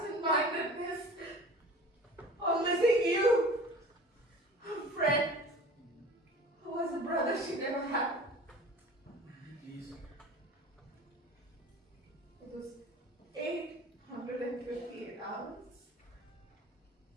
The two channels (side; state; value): both; normal; correlation 0.41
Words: on missing you, her friend, who was a brother she never had. Please. It was 858 hours.